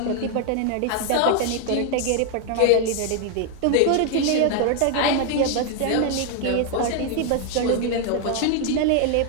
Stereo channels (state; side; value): different; both; correlation 0.00